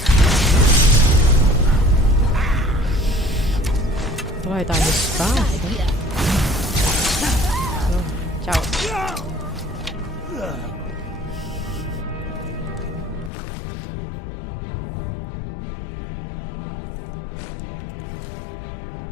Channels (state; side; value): drops out; right; at 13.3 s